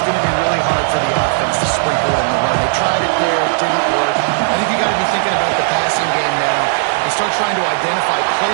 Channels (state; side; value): silent; left; digital silence